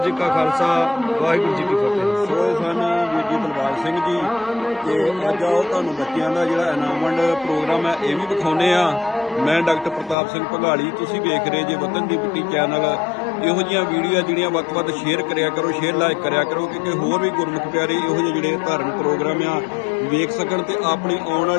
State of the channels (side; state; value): right; drops out; at 10.2 s